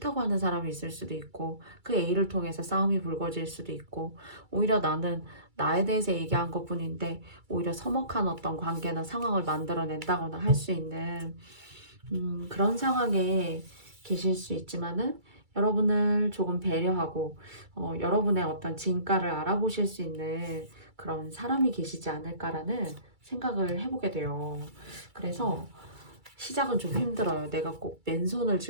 하는 사람이 있을 수도 있고, 그 A를 통해서 싸움이 불거질 수도 있고, 오히려 나는 나에 대해서 얘기한 것뿐인데 오히려 서먹한 어떤 관계나 상황을 만들어낸다거나 할 수 있는 그런 상황에 계실 수 있지만은, 여러분을 조금 배려하고 여러분의 어떤 진가를 알아보실 수 있는 그런 사람이 계시지 않을까라는 생각을 해보게 돼요. 그래서 시작은 좀 힘들어요. 내가 꼭 맨손을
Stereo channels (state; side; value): late; left; 2.3 ms